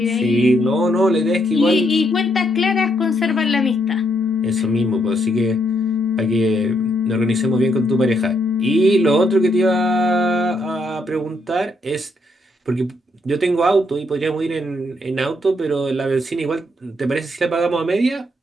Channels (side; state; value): both; normal; correlation 0.75